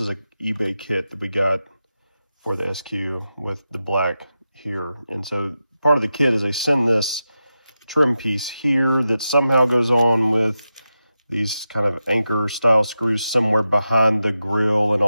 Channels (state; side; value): inverted; both; correlation -0.90